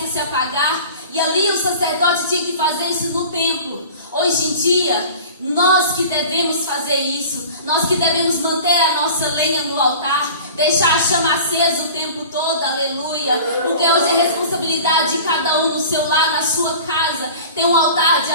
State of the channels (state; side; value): inverted; both; correlation -0.40